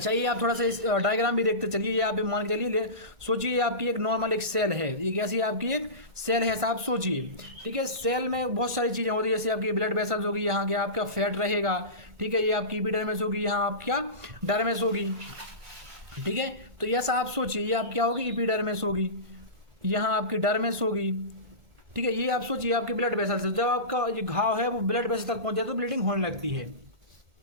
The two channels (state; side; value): late; left; 1.5 ms